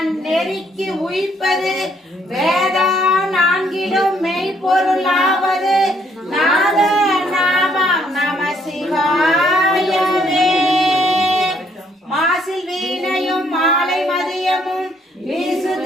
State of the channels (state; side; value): normal; both; correlation 0.68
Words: உயிர்ப்பது வேதா நான்கிலும் மெய்ப்பொருளாவது நாத நாமம் நம சிவாயவே. மாசில் வீணையும் மாலை மதியமும் வீசு